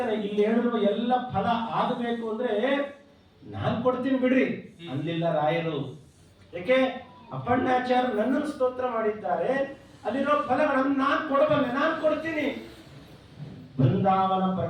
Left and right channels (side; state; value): both; identical; correlation 1.00